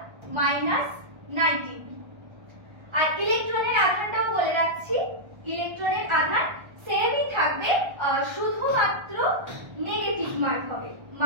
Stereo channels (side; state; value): left; late; 1.3 ms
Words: আর ইলেকট্রনের আধানটাও বলে রাখছি, ইলেকট্রনের আধান সেমই থাকবে, শুধুমাত্র নেগেটিভ মার্ক হবে,